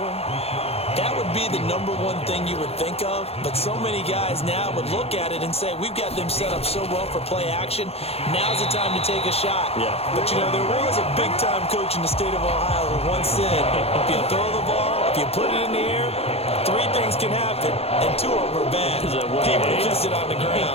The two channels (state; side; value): late; right; 0.29 ms